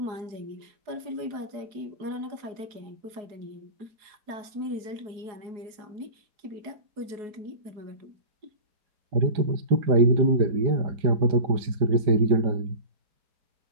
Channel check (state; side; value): late; left; 4.7 ms